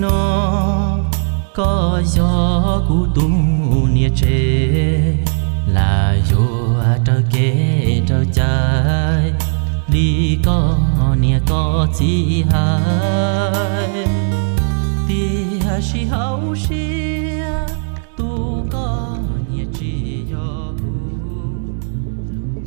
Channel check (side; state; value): left; silent; digital silence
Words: nó có gió cụ tu nia chê là vô trơ kê trơ trái đi có nia có chi hai tia si hậu xia tu có nia chi yo